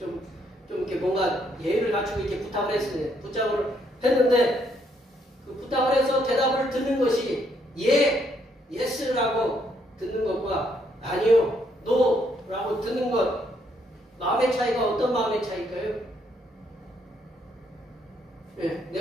이렇게 뭔가 예의를 갖추고 이렇게 부탁을 했어요. 부탁을 했는데 그 부탁을 해서 대답을 듣는 것이 예스라고 듣는 것과 아니요, 노라고 듣는 것 마음의 차이가 어떤 마음의 차이일까요? 네,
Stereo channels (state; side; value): normal; both; correlation 0.72